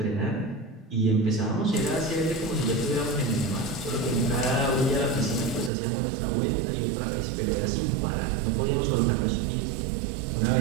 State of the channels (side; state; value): left; drops out; at 5.7 s